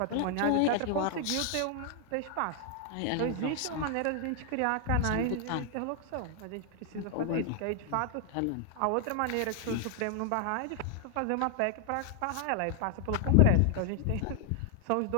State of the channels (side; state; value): both; different; correlation 0.00